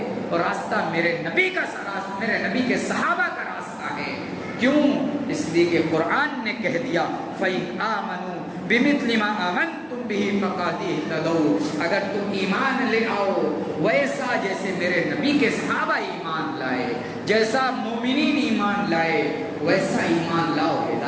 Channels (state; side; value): identical; both; correlation 1.00